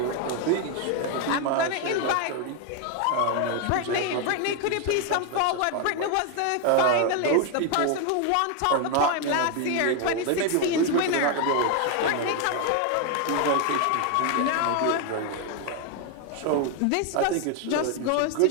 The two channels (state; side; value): different; both; correlation 0.01